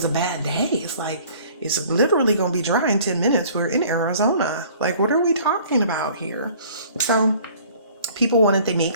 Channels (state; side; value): inverted; both; correlation -0.52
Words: a bad day. It's like, it's literally going to be dry in 10 minutes. We're in Arizona. Like, what are we talking about here? So people wanted to